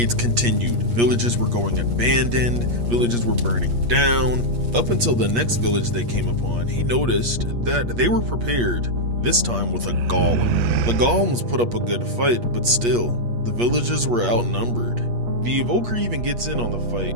continued. Villages were going abandoned, villages were burning down. Up until the next village they came upon, he noticed that they were prepared, this time with a golem. The golems put up a good fight, but still, the villagers were outnumbered. The evoker even gets in on the fight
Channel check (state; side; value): late; left; 8.4 ms